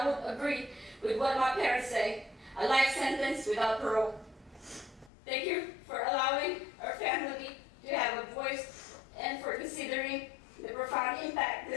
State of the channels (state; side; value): drops out; right; at 5.1 s